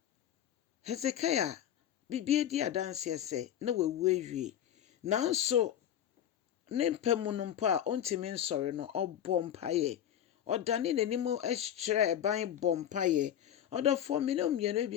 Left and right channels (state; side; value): quieter; right; 10.4 dB